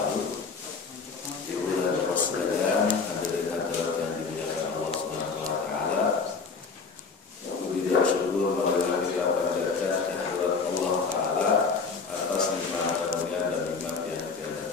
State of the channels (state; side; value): quieter; right; 4.8 dB